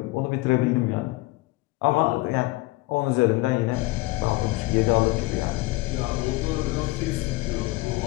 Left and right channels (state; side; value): quieter; right; 20.6 dB